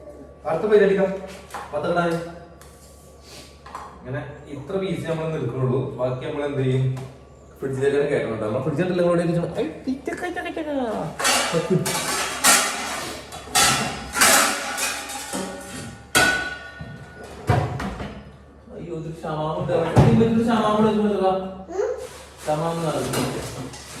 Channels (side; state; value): both; identical; correlation 1.00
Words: അടുത്ത പേര് അടിക്കാം. പത്തക്കിടാൻ ഇങ്ങനെ ഇത്ര പീസ് നമ്മൾ നിൽക്കുന്നുള്ളൂ. ബാക്കി നമ്മൾ എന്ത് ചെയ്യും? ഫ്രിഡ്ജിലേക്ക് കയറ്റുന്നുണ്ട്. നമ്മൾ ഫ്രിഡ്ജിൽ